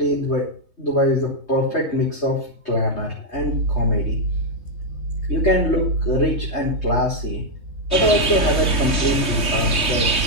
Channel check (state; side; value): late; right; 3.2 ms